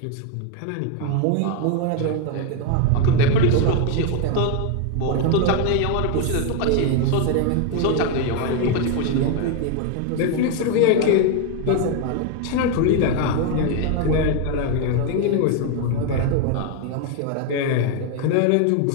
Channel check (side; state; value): both; different; correlation 0.01